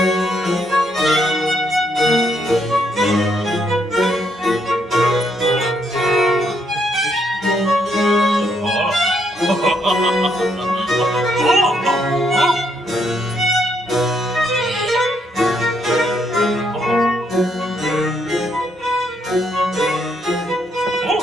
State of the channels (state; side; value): normal; both; correlation 0.74